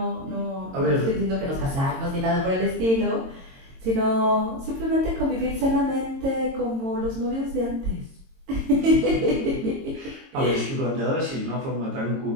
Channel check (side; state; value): left; late; 22 ms